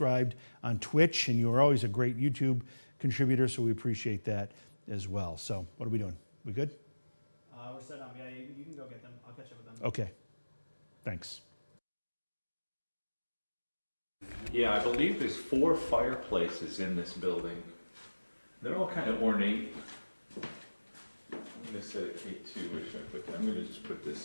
on Twitch, and you are always a great YouTube contributor, so we appreciate that as well. So what are we doing? We good? We're set up. Yeah, you can go get them. I'll catch up with them. Okay. Thanks. Yeah, I believe there's 4 fireplaces in this building. They're all kind of ornate. I'm going to set a K2, where should I put that? I'm going to just put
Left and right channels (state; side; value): inverted; both; correlation -1.00